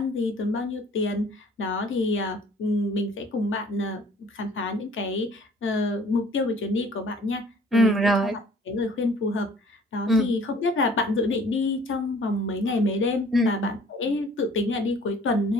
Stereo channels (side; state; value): both; normal; correlation 0.54